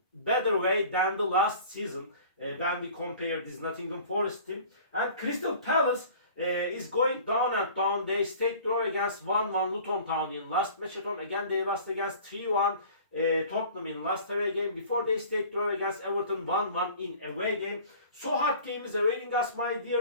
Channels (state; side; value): inverted; both; correlation -0.45